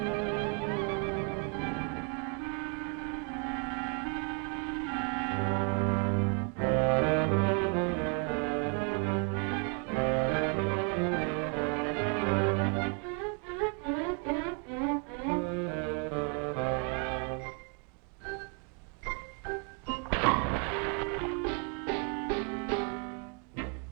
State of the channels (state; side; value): quieter; left; 39.2 dB